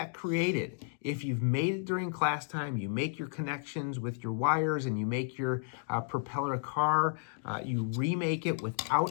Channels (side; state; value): right; silent; digital silence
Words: created, if you've made it during class time, you make your connections with your wires and you make your propeller car, you remake it